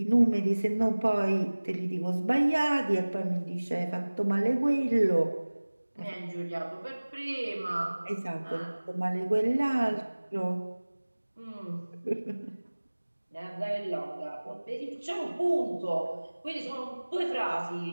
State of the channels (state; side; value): inverted; both; correlation -1.00